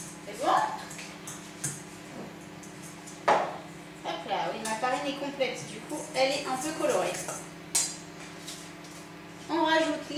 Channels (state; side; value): identical; both; correlation 1.00